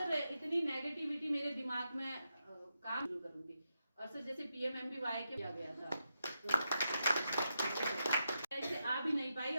इतनी नेगेटिविटी मेरे दिमाग में काम जरूर करूंगी। और सर जैसे PMMBY के किया गया था, ऐसे आ भी नहीं पाई,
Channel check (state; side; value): inverted; both; correlation -0.86